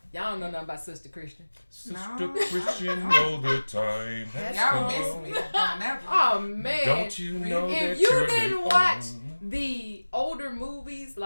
Y'all don't know nothing about Sister Christian. Sister Christian, know the time has Y'all come. miss me on that one. Oh, man. Don't you know that if you you're didn't the watch only- the older movies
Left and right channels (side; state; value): both; inverted; correlation -1.00